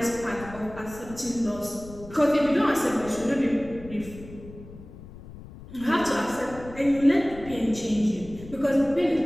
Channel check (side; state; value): left; noise; rumble, 16 dB below the sound